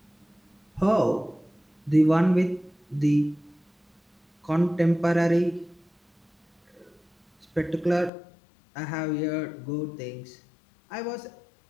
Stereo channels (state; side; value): drops out; right; at 8.1 s